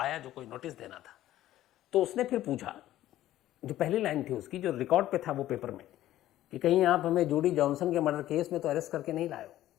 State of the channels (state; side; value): quieter; right; 13.9 dB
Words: जो कोई नोटिस देना था। तो उसने फिर पूछा, जो पहली लाइन थी उसकी, जो रिकॉर्ड पे था वो पेपर में, कि कहीं आप हमें जूडी जॉनसन के मर्डर केस में तो अरेस्ट करके नहीं लाए हो।